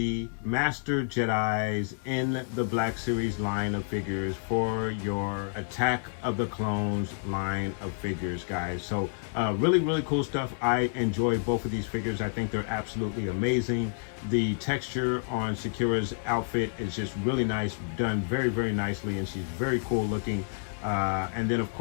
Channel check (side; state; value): right; silent; 57 dB below the other